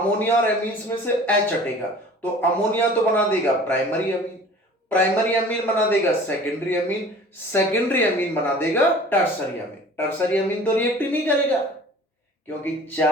और एमीन्स में से H हटेगा, तो अमोनिया तो बना देगा प्राइमरी अमीन, प्राइमरी अमीन बना देगा सेकेंडरी अमीन, सेकेंडरी अमीन बना देगा टर्सरी अमीन। टर्सरी अमीन तो रिएक्ट ही नहीं करेगा क्योंकि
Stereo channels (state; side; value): normal; both; correlation 0.45